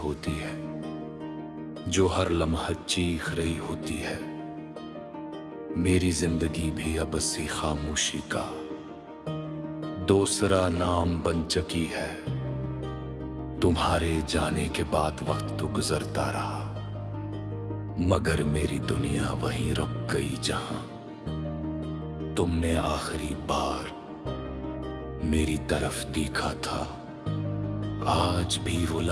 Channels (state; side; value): identical; both; correlation 1.00